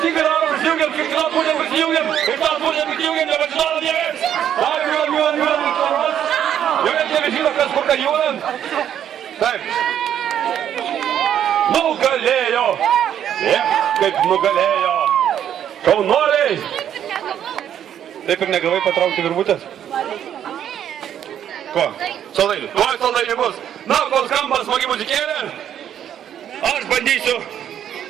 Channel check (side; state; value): left; quieter; 9.9 dB